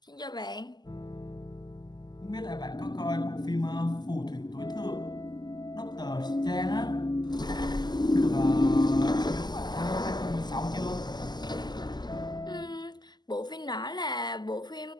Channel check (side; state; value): right; late; 0.21 ms